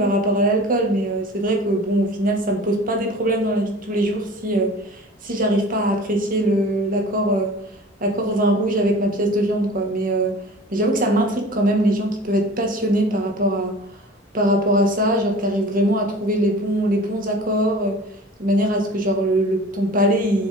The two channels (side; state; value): both; normal; correlation 0.42